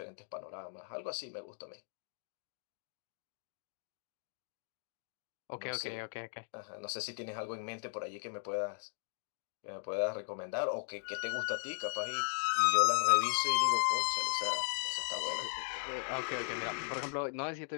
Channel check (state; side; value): silent; right; digital silence